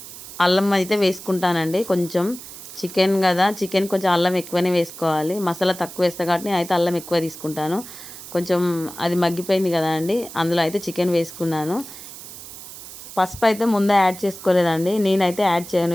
అల్లం అయితే వేసుకుంటానండి. కొంచెం చికెన్ కదా, చికెన్ కొంచెం అల్లం ఎక్కువనే వేసుకోవాలి. మసాలా తక్కువ వేస్తా కాబట్టి నేనైతే అల్లం ఎక్కువ తీసుకుంటాను. కొంచెం అది మగ్గిపోయింది కదా అండి, అందులో అయితే చికెన్ వేసుకున్నాను. పసుపు అయితే ముందే యాడ్ చేసుకోలేదండి, నేనైతే యాడ్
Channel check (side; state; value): right; noise; hiss, 14 dB below the sound